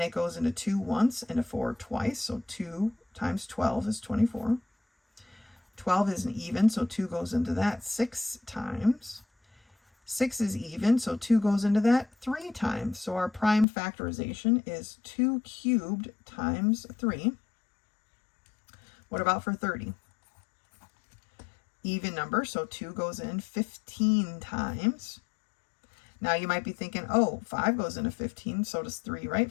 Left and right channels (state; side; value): drops out; right; at 13.7 s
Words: it goes into 2 once and a 4 twice. So 2 times 12 is 24. 12 is an even, so 2 goes into that 6 times. 6 is even, so 2 goes into that 3 times. So our prime factorization is 2 cubed times 3. What about for 30? Even number, so 2 goes in 15 times. Now you might be thinking, oh, 5 goes into 15, so does 3, right?